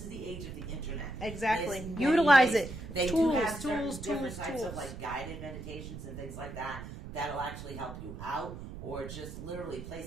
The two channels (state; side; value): noise; right; rumble, 10 dB below the sound